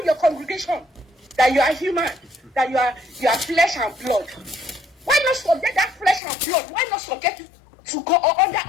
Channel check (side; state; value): right; drops out; at 6.2 s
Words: your congregation? That you are human, that you are flesh and blood. Why not subject that flesh and blood? Why not subject it to go